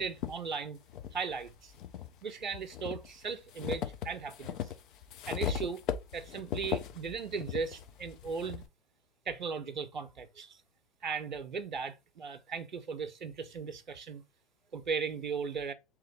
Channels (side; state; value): both; normal; correlation 0.36